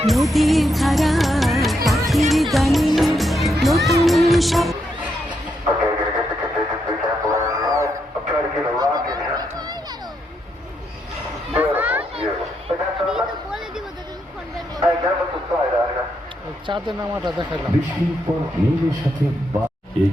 নদীর ধারা পাখির গানে নতুন সব Okay, gonna get the contingency sample in. I'm trying to get a rock in here. Beautiful, beautiful. Hey, got something? Hey, get with the side out here. চাঁদে নামাটা দেখালাম। বৃষ্টির পর মেঘের সাথে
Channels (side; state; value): both; normal; correlation 0.80